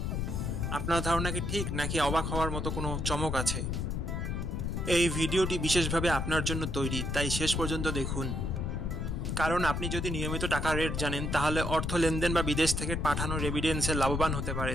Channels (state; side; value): noise; left; rumble, 1 dB below the sound